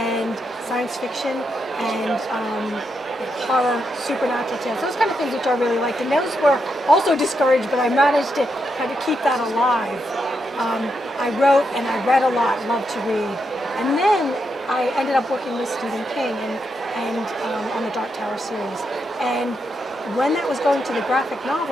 science fiction and horror, supernatural tales, those kind of things which I really liked. And those were also discouraged, but I managed to kind of keep that alive. I wrote and I read a lot, loved to read. And then I ended up working with Stephen King and on the Dark Tower series. And when that was going to the graphic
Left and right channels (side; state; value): both; normal; correlation 0.82